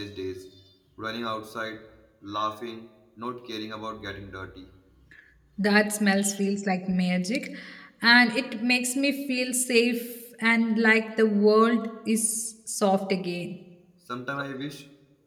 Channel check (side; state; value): both; identical; correlation 1.00